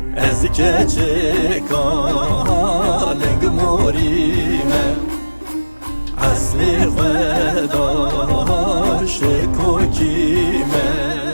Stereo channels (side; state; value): both; inverted; correlation -1.00